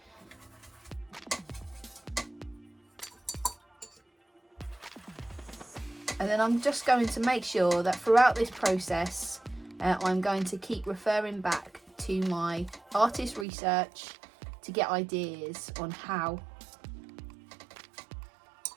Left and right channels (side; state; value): left; drops out; at 13.5 s